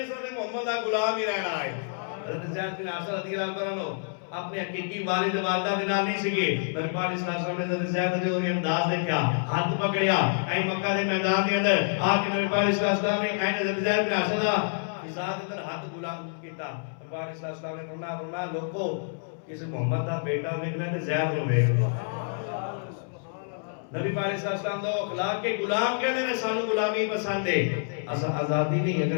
سر محمد دا غلام ہی رہنا ہے. حضرت زید بن حارثہ رضی اللہ تعالیٰ عنہ اپنے حقیقی والد والدہ دے نال نہیں سگے. نبی پاک علیہ السلام نے حضرت زید دے انداز دیکھا ہاتھ پکڑیا اے مکہ دے میدان دے اندر آ کے نبی پاک علیہ السلام نے اے حضرت زید بن حارثہ دا فضا دے اندر ہاتھ غلام کیتا. نبی پاک علیہ السلام نے فرمایا لوگو کسی محمد دا بیٹا ویکھنا تے زید نو ویکھ لو. نبی پاک علیہ السلام دا اخلاق کے غلام کہندے نے سانو غلامی پسند ہے. اسا آزادی نہیں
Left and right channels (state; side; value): silent; right; 60 dB below the other